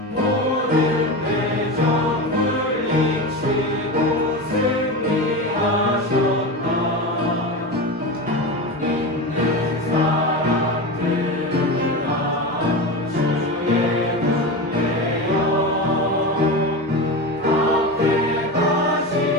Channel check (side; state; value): both; normal; correlation 0.23